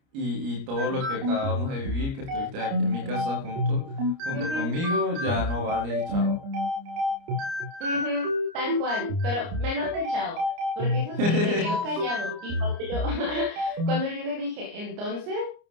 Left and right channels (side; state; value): left; late; 29 ms